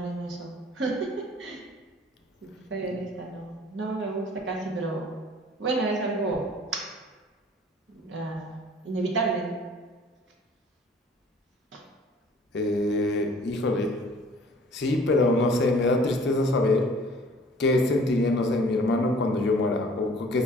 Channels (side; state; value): both; normal; correlation 0.52